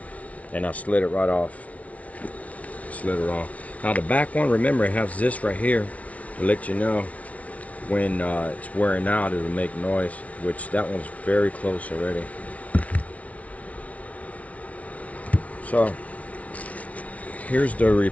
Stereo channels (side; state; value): right; late; 0.067 ms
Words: and I slid it right off. Slid it off. Now the back one, remember, it has this right here to let you know when it's wearing out, it'll make noise, which that one's very close already. So here's the